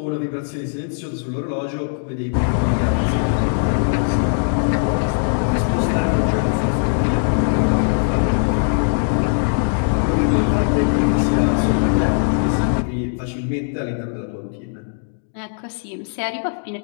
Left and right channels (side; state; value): right; silent; digital silence